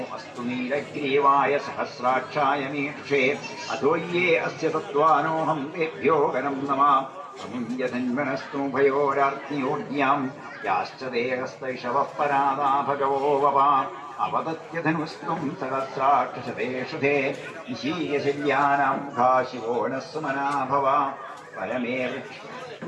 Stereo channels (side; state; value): both; identical; correlation 1.00